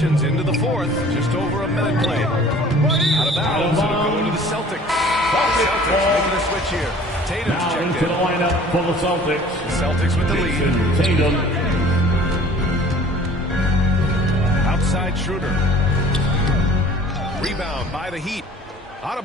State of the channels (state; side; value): normal; both; correlation 0.49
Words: into the fourth. Just over a minute played. Out of bounds. It'll go to the Celtics. Celtics making a switch here. Tatum's Now checked into in. the lineup for the Celtics. The Celtics with the lead. Tatum. Outside Schroeder. Rebound by the Heat.